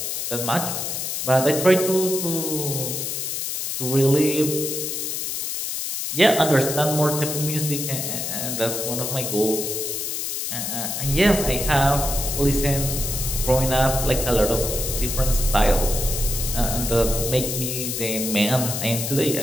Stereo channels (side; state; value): left; noise; hiss, 3 dB below the sound